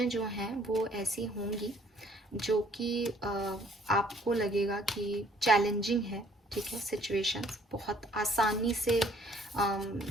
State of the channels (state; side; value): normal; both; correlation 0.60